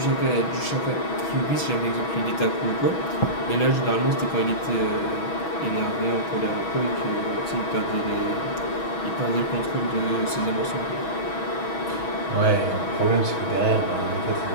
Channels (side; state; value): right; late; 6.2 ms